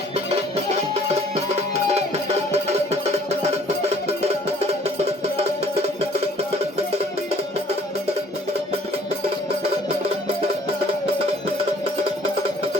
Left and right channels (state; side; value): normal; both; correlation 0.57